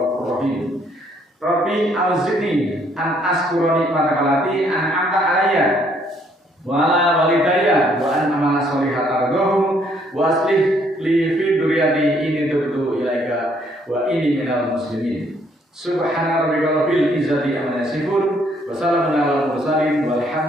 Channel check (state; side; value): normal; both; correlation 0.67